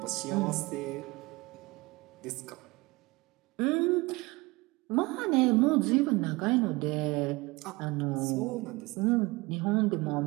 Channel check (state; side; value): quieter; left; 23.3 dB